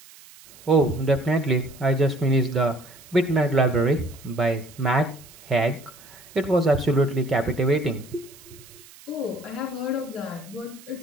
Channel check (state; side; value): noise; right; hiss, 22 dB below the sound